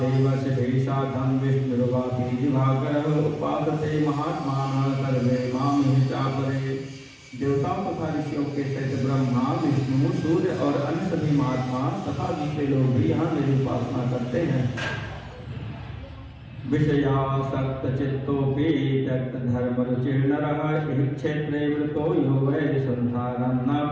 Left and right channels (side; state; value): both; identical; correlation 1.00